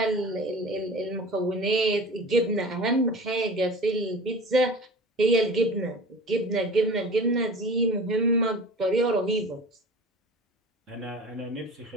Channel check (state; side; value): normal; both; correlation 0.38